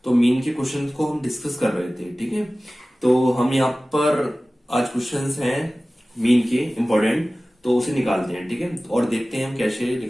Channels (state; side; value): normal; both; correlation 0.97